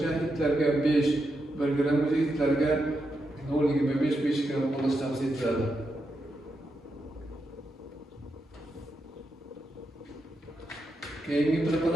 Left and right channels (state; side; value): normal; both; correlation 0.85